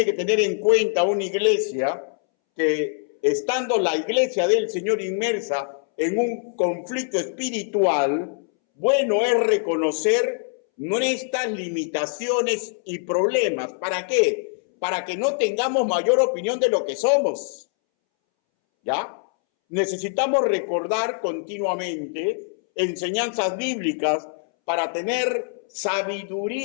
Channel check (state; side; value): silent; right; 63 dB below the other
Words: que tener en cuenta una iglesia, que estando la iglesia del Señor inmersa en un conflicto espiritual, bueno es reconocer nuestras limitaciones y problemas. ¿Para qué? Para que no tengamos mayor opinión de lo que somos. ¿Ya? Necesitamos recordar continuamente enseñanzas bíblicas para tener